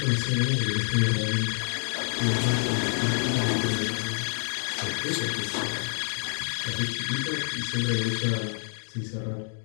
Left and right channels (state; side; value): silent; right; 60 dB below the other